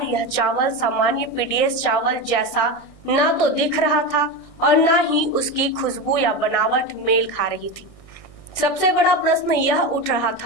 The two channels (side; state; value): right; late; 1.6 ms